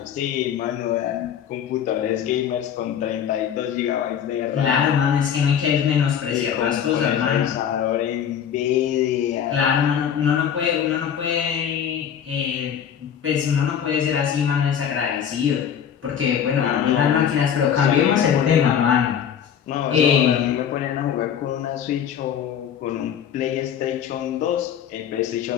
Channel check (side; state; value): right; quieter; 8.6 dB